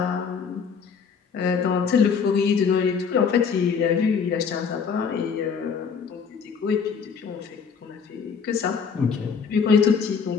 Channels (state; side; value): quieter; right; 6.1 dB